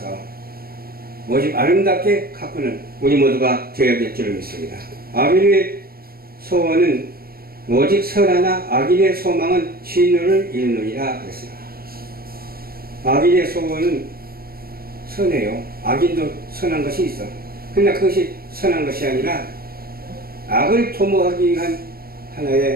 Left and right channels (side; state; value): left; late; 0.44 ms